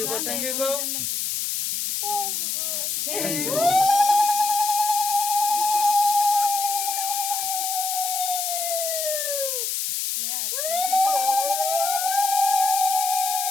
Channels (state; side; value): noise; left; hiss, 1 dB below the sound